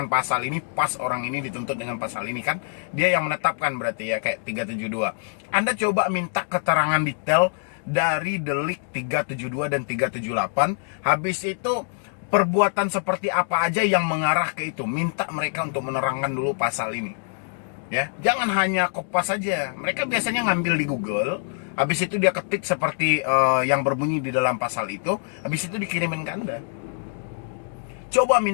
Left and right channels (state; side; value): silent; right; digital silence